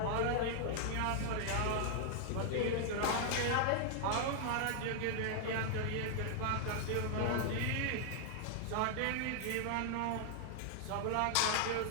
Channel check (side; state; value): both; different; correlation 0.00